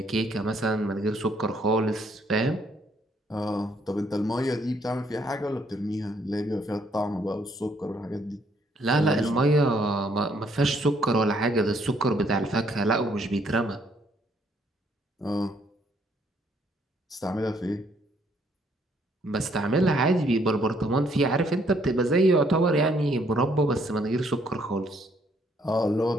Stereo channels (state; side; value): normal; both; correlation 0.68